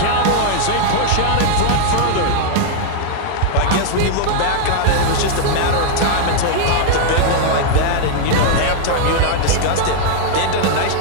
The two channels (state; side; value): different; both; correlation -0.01